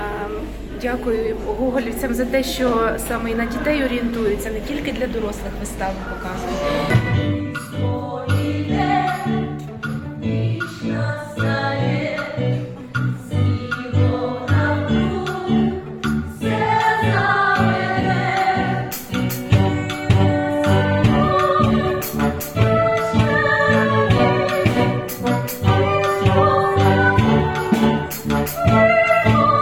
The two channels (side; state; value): both; identical; correlation 1.00